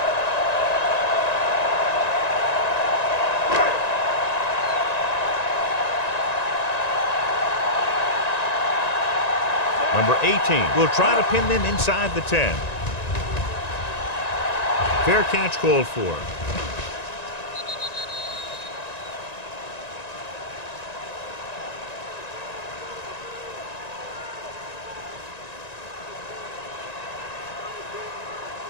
Number 18 will try to pin them inside the 10. Fair catch called for.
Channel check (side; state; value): right; late; 1.9 ms